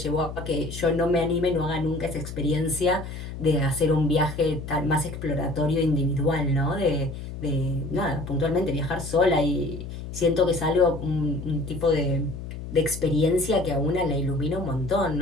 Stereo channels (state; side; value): noise; left; hum, 9 dB below the sound